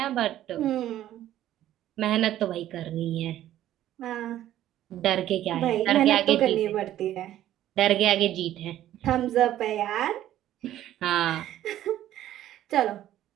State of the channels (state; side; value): quieter; left; 12.8 dB